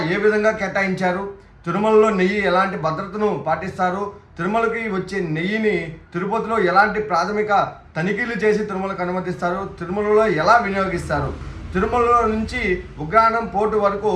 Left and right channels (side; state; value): both; identical; correlation 1.00